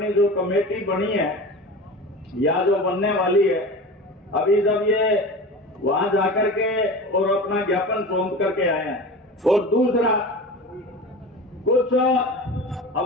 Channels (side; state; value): both; normal; correlation 0.32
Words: जो कमेटी बनी है या जो बनने वाली है, अभी जब ये वहां जाकर के और अपना ज्ञापन सौंप करके आए हैं, और दूसरा कुछ